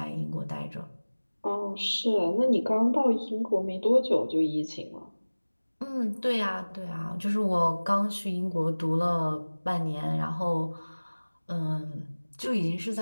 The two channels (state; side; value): inverted; both; correlation -1.00